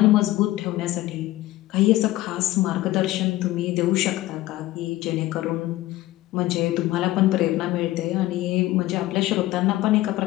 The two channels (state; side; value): quieter; right; 16.7 dB